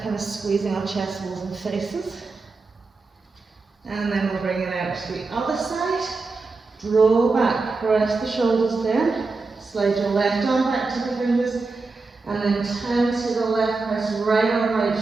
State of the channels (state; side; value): quieter; left; 3.9 dB